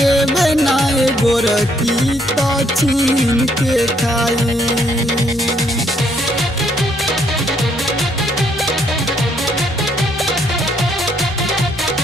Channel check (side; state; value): both; normal; correlation 0.70